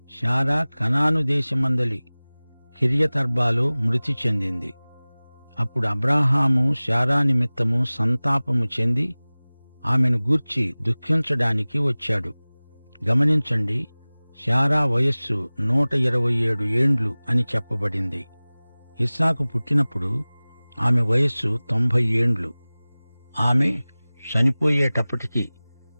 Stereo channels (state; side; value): inverted; both; correlation -0.99